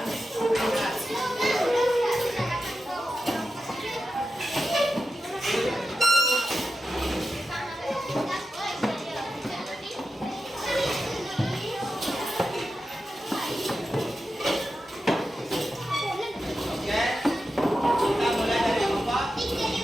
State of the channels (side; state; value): both; normal; correlation 0.91